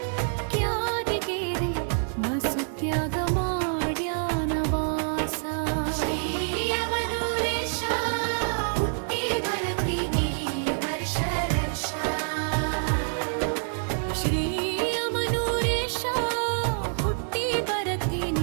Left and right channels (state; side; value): silent; left; digital silence